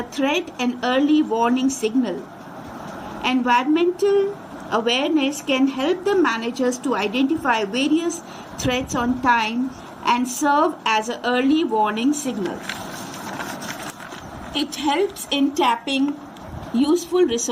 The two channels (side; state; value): both; identical; correlation 1.00